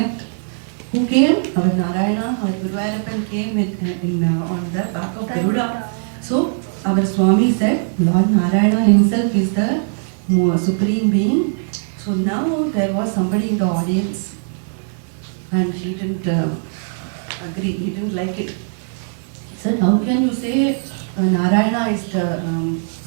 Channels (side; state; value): left; silent; digital silence